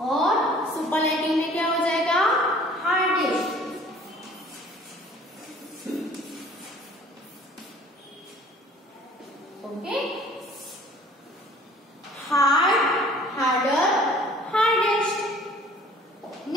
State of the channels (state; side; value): normal; both; correlation 0.52